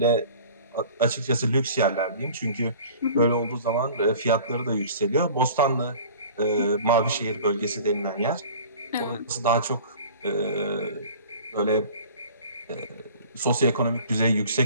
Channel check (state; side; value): inverted; both; correlation -0.44